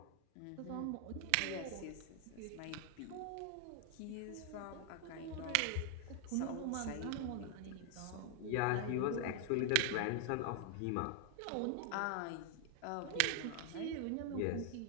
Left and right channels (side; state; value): both; different; correlation 0.00